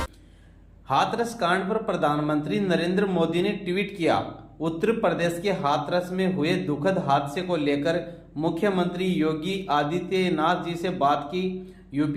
हाथरस कांड पर प्रधानमंत्री नरेंद्र मोदी ने ट्वीट किया। उत्तर प्रदेश के हाथरस में हुए दुखद हादसे को लेकर मुख्यमंत्री योगी आदित्यनाथ जी से बात की।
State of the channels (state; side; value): identical; both; correlation 1.00